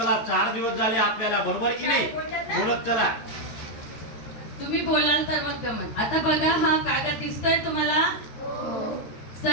4 दिवस झाले आपल्याला, बरोबर की नाही? बोलत चला. तुम्ही बोलाल तर मग गमत. आता बघा हा कागद दिसतोय तुम्हाला?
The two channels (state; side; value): late; right; 13 ms